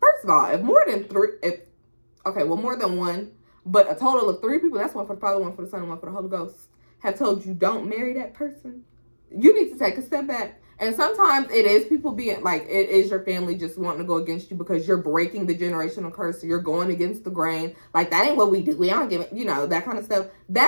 of all, if more than one, but a total of 3 people, that's one for the Father, one for the Son, and one for the Holy Ghost, have told you don't marry that person, you need to take a step back. And sometimes it is people being like, it is your family just wanting to go against you because you're breaking the generational curse. So you're going against the grain. Like, that ain't what we do. We don't give it, that kind of stuff.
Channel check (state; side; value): inverted; both; correlation -1.00